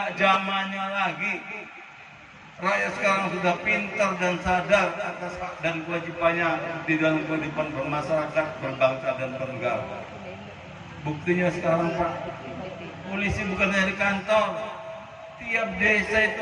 zamannya lagi. Rakyat sekarang sudah pintar dan sadar atas hak dan kewajibannya di dalam kehidupan bermasyarakat, berbangsa dan bernegara. Buktinya sekarang Pak, polisi bukan dari kantor. Tiap desa itu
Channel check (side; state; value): both; identical; correlation 1.00